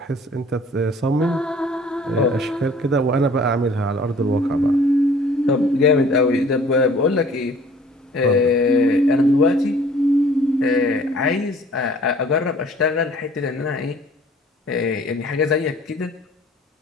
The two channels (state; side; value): normal; both; correlation 0.53